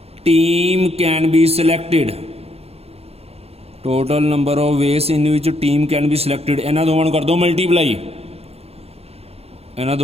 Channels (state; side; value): late; left; 0.29 ms